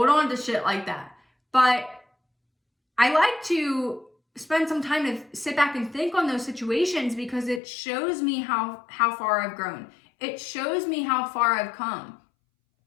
on to shit like that. But I like to spend some time to sit back and think on those situations because it shows me how far I've grown. It shows me how far I've come.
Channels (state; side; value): drops out; right; at 7.6 s